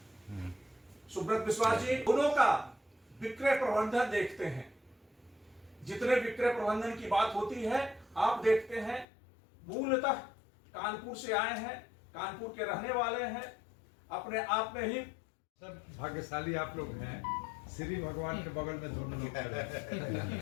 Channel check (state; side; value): drops out; right; at 9.1 s